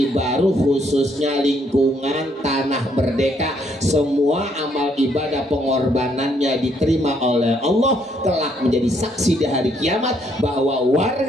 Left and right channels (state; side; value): normal; both; correlation 0.70